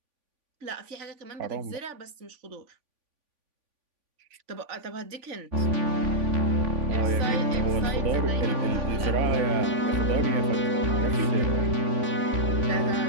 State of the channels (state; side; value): late; left; 3.5 ms